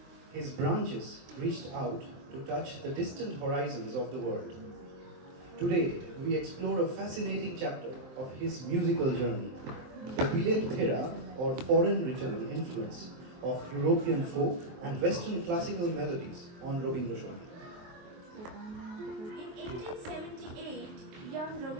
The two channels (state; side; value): late; left; 23 ms